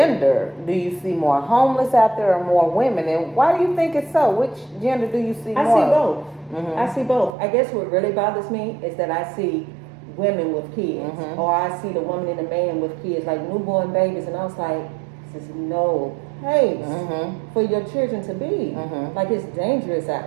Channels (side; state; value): left; drops out; at 7.4 s